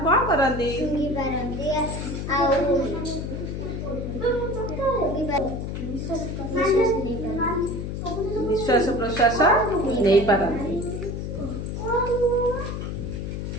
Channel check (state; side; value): noise; left; hum, 4 dB below the sound